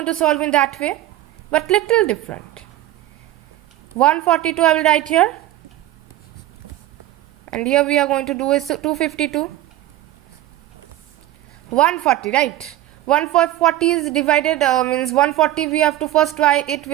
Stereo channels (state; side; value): quieter; left; 14.6 dB